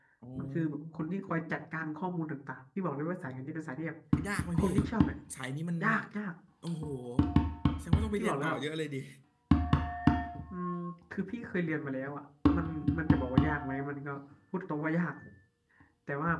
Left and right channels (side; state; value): both; identical; correlation 1.00